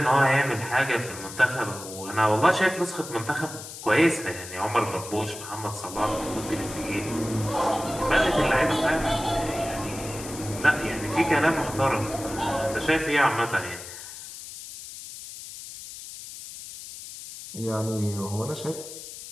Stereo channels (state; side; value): noise; left; hiss, 12 dB below the sound